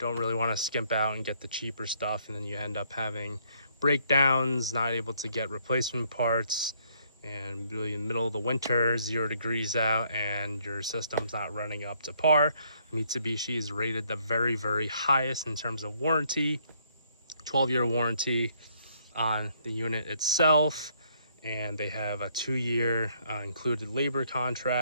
really want to skimp out and get the cheaper stuff, and then you end up having breakdowns, not able to get replacement parts, and really in the middle of the winter, 0 degrees out, and your system's not running up to par. Mitsubishi is rated the very, very highest in terms of warranty, 12-year warranty on the unit itself, and they have a 2-year included labor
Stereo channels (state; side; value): inverted; both; correlation -0.68